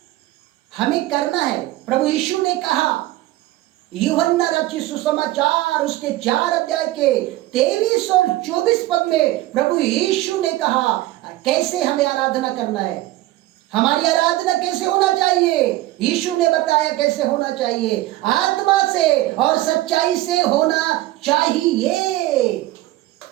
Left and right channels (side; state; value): left; quieter; 16.7 dB